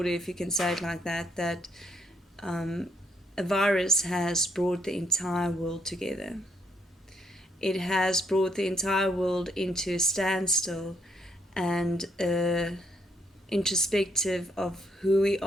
if you can say it like that, that a virus has brought the entire world together. It has brought the entire world into a standstill and introspective of who we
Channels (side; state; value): both; normal; correlation 0.72